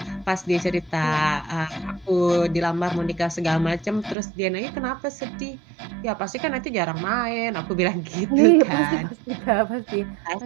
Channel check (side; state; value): left; drops out; at 4.2 s